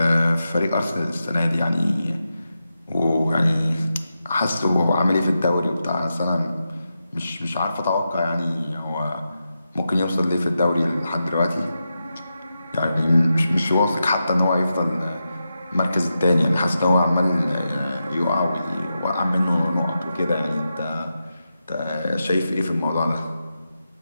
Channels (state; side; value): inverted; both; correlation -0.89